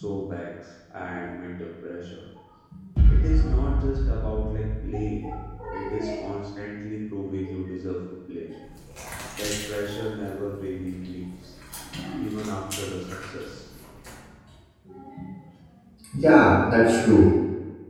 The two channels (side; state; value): both; identical; correlation 1.00